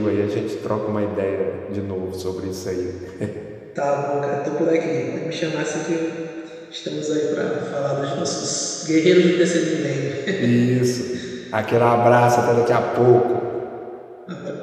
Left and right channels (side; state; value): both; identical; correlation 1.00